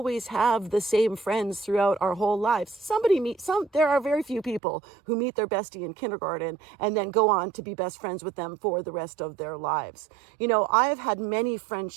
have the same friends throughout our whole lives. There are very few people who meet their bestie in kindergarten and then go on to be best friends with them for the rest of their lives. You know, I've had many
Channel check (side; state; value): left; drops out; at 4.6 s